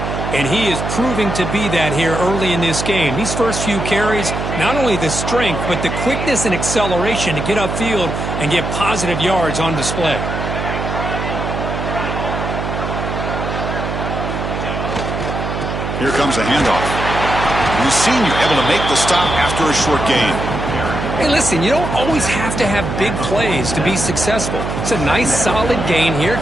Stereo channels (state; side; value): noise; right; hum, 4 dB below the sound